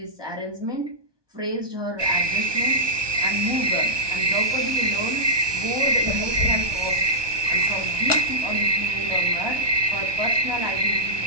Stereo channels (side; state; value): left; late; 1.2 ms